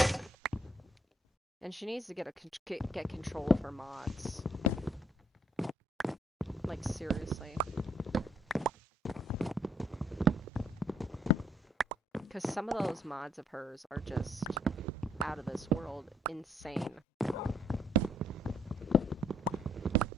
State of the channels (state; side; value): normal; both; correlation 0.68